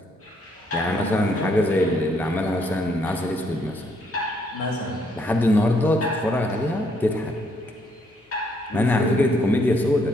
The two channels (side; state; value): both; normal; correlation 0.71